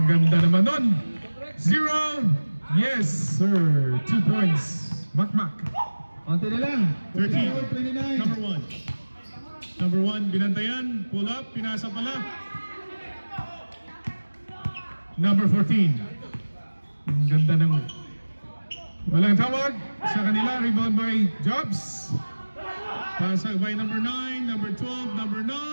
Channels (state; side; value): inverted; both; correlation -1.00